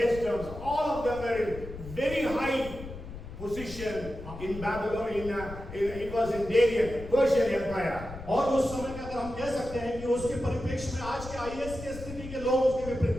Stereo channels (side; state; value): left; noise; rumble, 12 dB below the sound